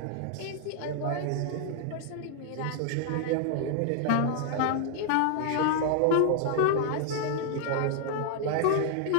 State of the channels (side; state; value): both; different; correlation 0.00